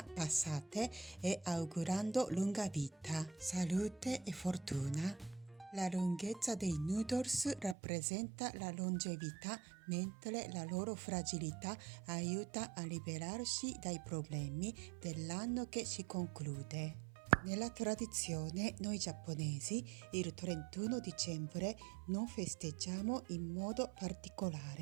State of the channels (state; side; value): drops out; left; at 7.8 s